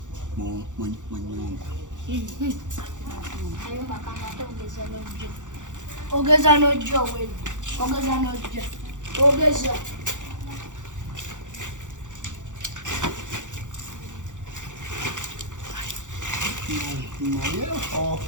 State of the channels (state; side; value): late; left; 0.86 ms